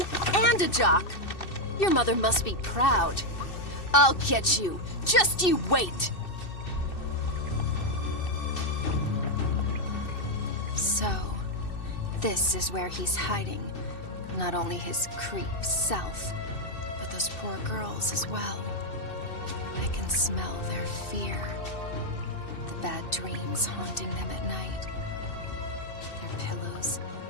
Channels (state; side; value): late; right; 2.6 ms